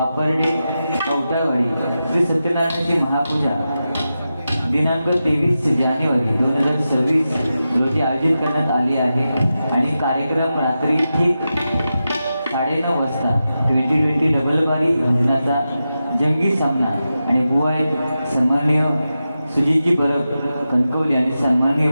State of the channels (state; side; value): inverted; both; correlation -0.91